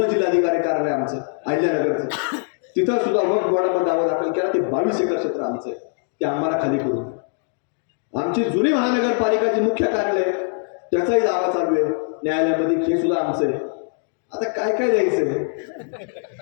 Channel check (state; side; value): silent; right; 57 dB below the other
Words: जिल्हाधिकारी कार्यालय आमचं अहिल्यानगरचं, तिथं सुद्धा वक्फ बोर्डामध्ये दावा दाखल केला ते 22 एकर क्षेत्र आमचं आहे, ते आम्हाला खाली करून. आमची जुनी महानगरपालिकाची मुख्य कार्यालय त्याचाही दावा चालू आहे न्यायालयामध्ये, हे सुद्धा आमचं आहे. आता काय काय द्यायचंय?